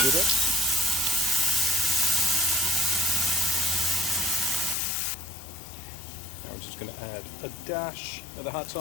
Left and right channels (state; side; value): drops out; right; at 4.8 s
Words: do this. Now we're just going to add a dash of the hot